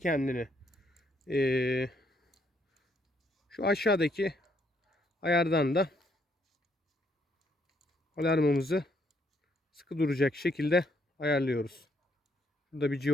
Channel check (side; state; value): both; normal; correlation 0.71